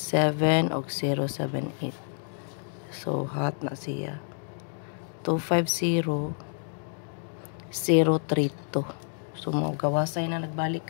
og 078. So hot na siya. 250 032. So mo gawasay na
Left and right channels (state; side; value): silent; right; 58 dB below the other